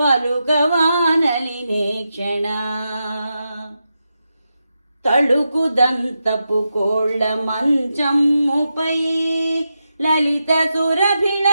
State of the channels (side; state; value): both; inverted; correlation -0.88